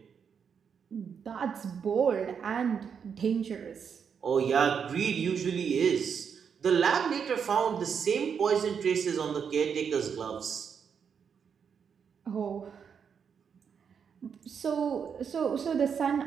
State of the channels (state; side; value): quieter; left; 6.9 dB